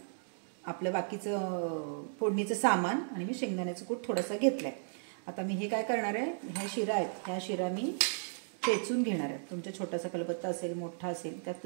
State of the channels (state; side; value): silent; left; digital silence